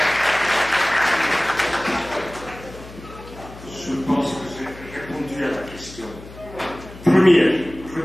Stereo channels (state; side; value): noise; left; hum, 17 dB below the sound